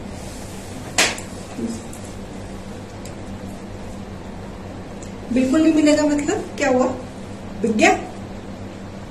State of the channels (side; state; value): both; identical; correlation 1.00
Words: बिल्कुल नहीं मिलेगा मतलब क्या हुआ? बिक गया?